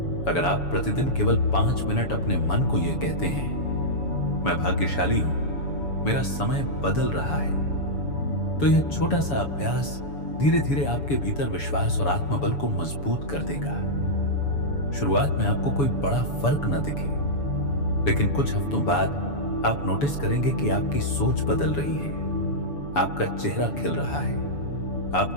अगर आप प्रतिदिन केवल 5 मिनट अपने मन को यह कहते हैं मैं भाग्यशाली हूं, मेरा समय बदल रहा है, तो यह छोटा सा अभ्यास धीरे धीरे आपके भीतर विश्वास और आत्मबल को मजबूत कर देगा। शुरुआत में आपको कोई बड़ा फर्क न दिखे, लेकिन कुछ हफ्तों बाद आप नोटिस करेंगे कि आपकी सोच बदल रही है, आपका चेहरा खिल रहा है,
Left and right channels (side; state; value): right; late; 7.0 ms